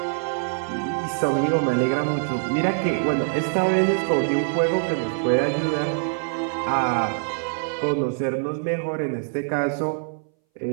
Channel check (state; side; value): silent; left; 61 dB below the other